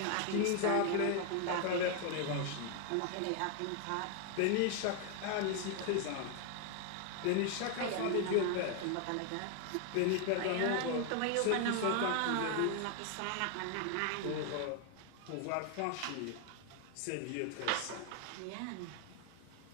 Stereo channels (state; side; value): different; both; correlation 0.01